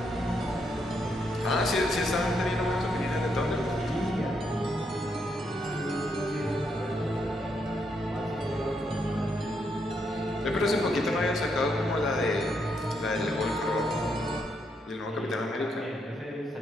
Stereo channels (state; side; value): normal; both; correlation 0.77